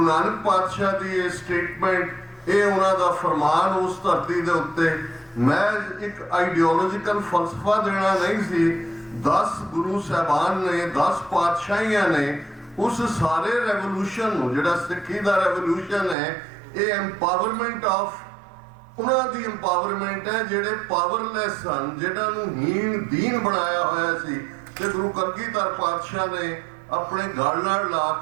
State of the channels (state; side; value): drops out; left; at 16.2 s